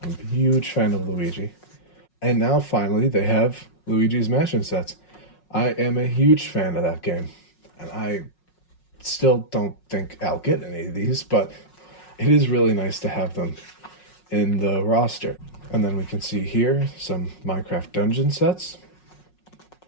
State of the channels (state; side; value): late; right; 5.5 ms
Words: I'm a huge fan of Luigi. And now finally they have Luigi's Mansion sets. I am a huge fan of that game. And I still don't think I'll get any of these, but it is really nice to have them in the roster. And then we can see here some Minecraft dungeon sets